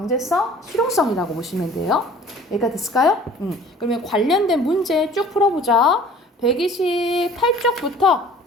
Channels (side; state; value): both; normal; correlation 0.48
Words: 실용성이라고 보시면 돼요. 여기까지 됐을까요? 그러면 관련된 문제 쭉 풀어보자. 128쪽부터